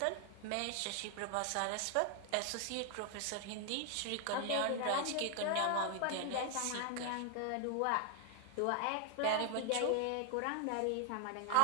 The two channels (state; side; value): different; both; correlation 0.00